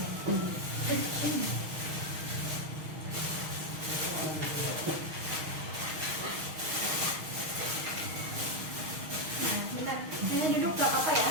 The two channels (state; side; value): late; left; 6.4 ms